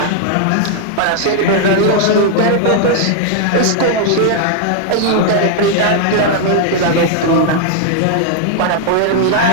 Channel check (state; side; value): different; both; correlation 0.00